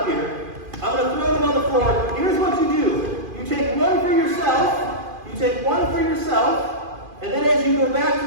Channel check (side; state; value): left; late; 2.5 ms